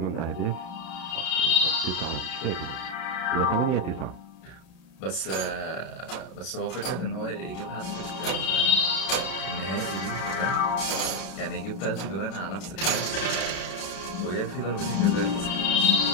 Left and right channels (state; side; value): late; right; 31 ms